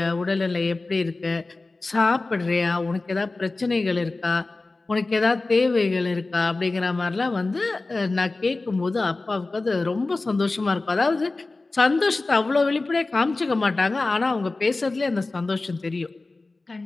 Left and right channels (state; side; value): quieter; right; 3.3 dB